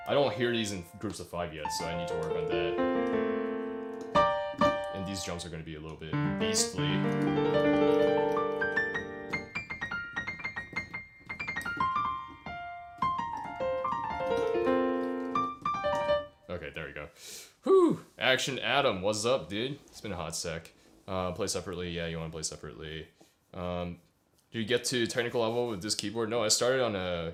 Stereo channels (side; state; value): both; identical; correlation 1.00